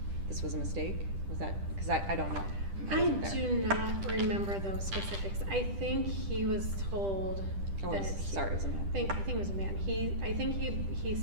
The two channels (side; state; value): left; late; 10 ms